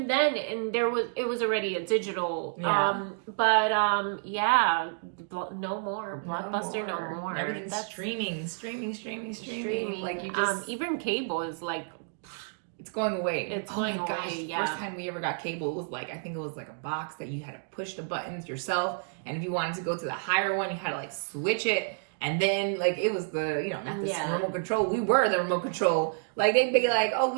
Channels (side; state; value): left; silent; digital silence